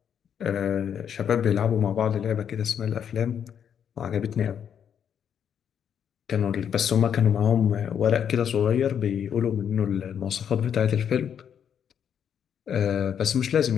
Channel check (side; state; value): right; quieter; 8.4 dB